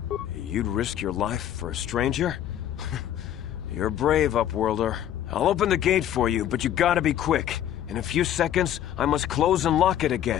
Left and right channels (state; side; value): quieter; right; 11.1 dB